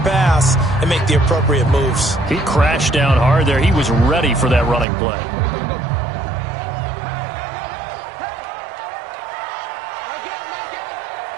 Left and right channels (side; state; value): left; drops out; at 4.9 s